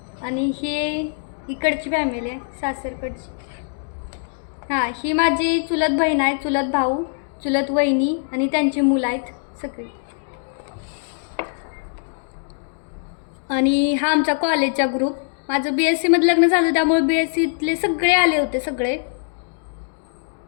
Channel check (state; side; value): silent; right; 64 dB below the other